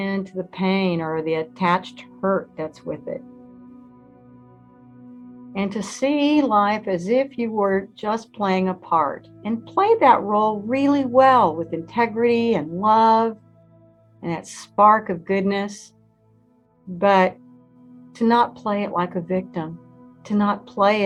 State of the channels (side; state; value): both; identical; correlation 1.00